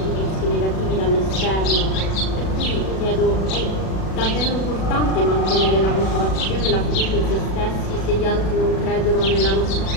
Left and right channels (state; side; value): late; right; 37 ms